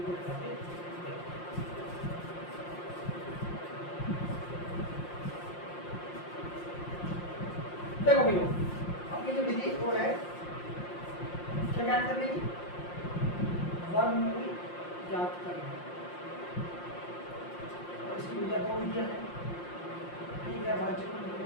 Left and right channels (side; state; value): right; late; 5.7 ms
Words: बताते हैं। देखो भैया अपनी जो विधि वो है क्या ज्ञात करने की? वर्गमूल ज्ञात करना। और इसकी भैया 2 विधियां हैं। एक है भाज्य गुणनखंड